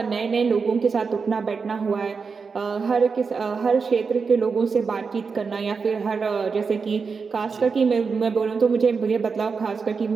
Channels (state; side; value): quieter; left; 5.2 dB